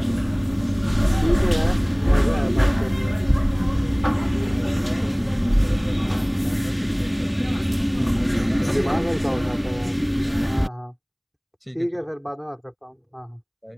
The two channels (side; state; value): both; identical; correlation 1.00